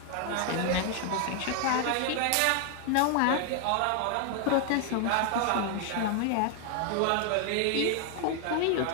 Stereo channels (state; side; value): different; both; correlation 0.00